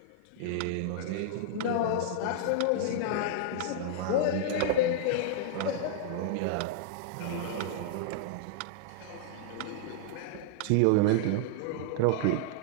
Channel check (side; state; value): both; different; correlation -0.01